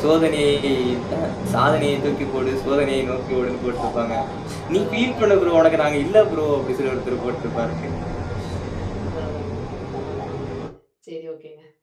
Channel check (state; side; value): identical; both; correlation 1.00